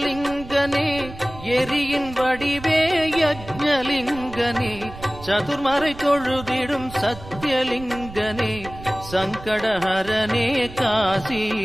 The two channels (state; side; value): noise; right; rumble, 15 dB below the sound